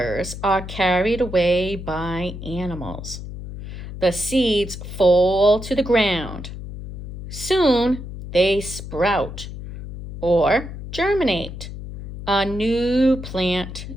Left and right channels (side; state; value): left; noise; hum, 10 dB below the sound